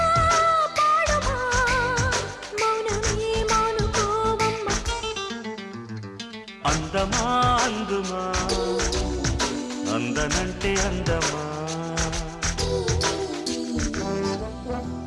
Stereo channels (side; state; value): both; identical; correlation 1.00